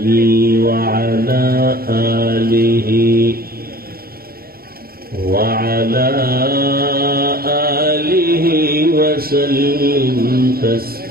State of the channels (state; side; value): late; left; 0.44 ms